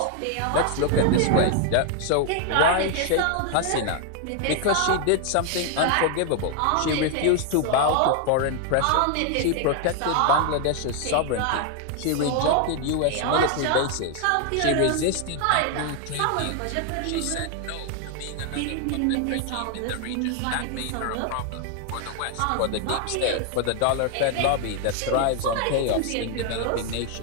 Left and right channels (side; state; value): both; different; correlation 0.00